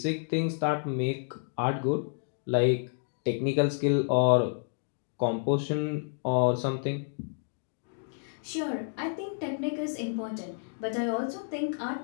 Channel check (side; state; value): right; silent; digital silence